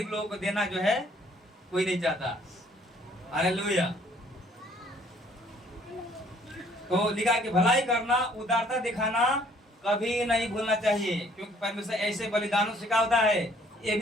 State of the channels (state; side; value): normal; both; correlation 0.60